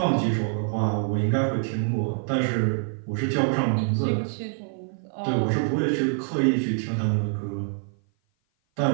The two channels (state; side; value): silent; left; 55 dB below the other